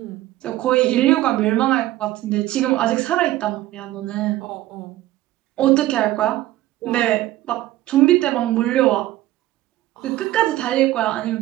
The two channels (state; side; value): quieter; left; 15.4 dB